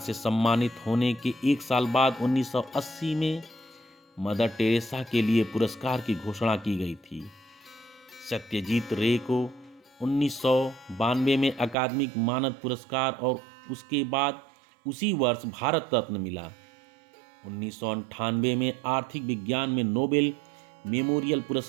सम्मानित होने के एक साल बाद 1980 में मदर टेरेसा के लिए पुरस्कार की घोषणा की गई थी। सत्यजीत रे को 1992 में अकादमिक मानद पुरस्कार और उसके बाद उसी वर्ष भारत रत्न मिला। 1998 में आर्थिक विज्ञान में नोबेल मेमोरियल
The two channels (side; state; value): left; drops out; at 11.8 s